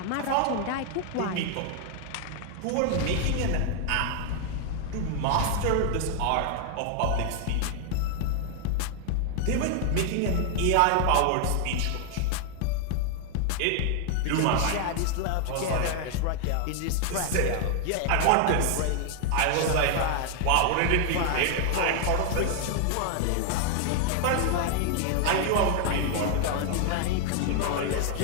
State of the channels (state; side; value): different; both; correlation 0.00